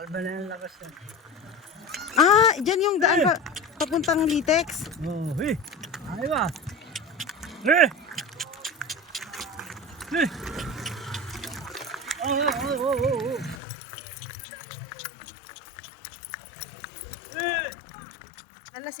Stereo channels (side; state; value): right; drops out; at 13.6 s